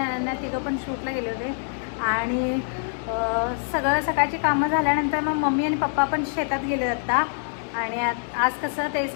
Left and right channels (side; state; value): right; silent; 62 dB below the other